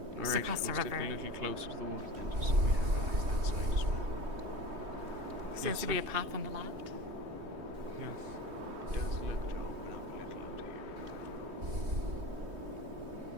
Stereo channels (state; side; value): late; left; 3.2 ms